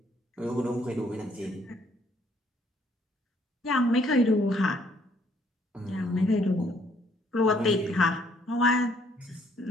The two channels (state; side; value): normal; both; correlation 0.66